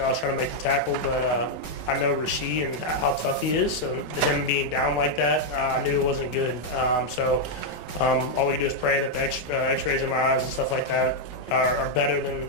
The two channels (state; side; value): late; right; 5.3 ms